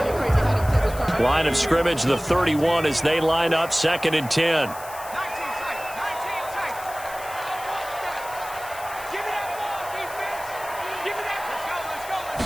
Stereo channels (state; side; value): noise; left; hiss, 15 dB below the sound